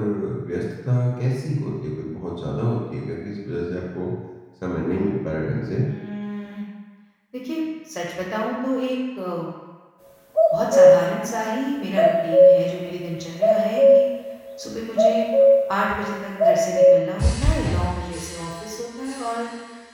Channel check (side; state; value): both; identical; correlation 1.00